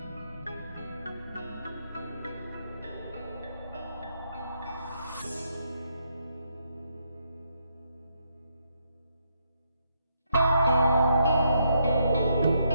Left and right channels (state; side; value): inverted; both; correlation -0.77